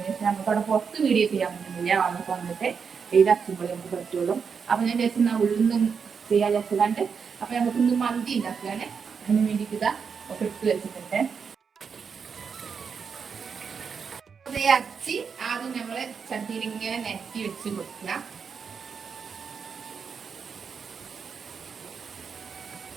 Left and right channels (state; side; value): quieter; left; 6.1 dB